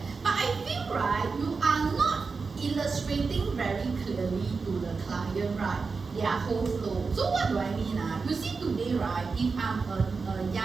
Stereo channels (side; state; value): left; quieter; 4.6 dB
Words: but I feel right, you are not illustrating very clearly to the client, right, their whole flow. So what do I mean? You see today, right, if I'm a